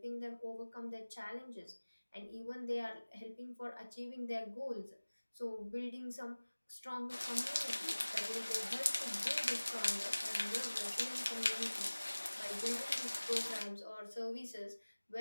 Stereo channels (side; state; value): both; inverted; correlation -1.00